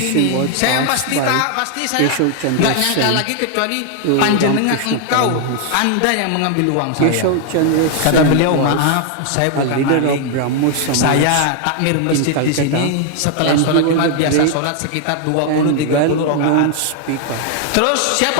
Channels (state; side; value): different; both; correlation 0.00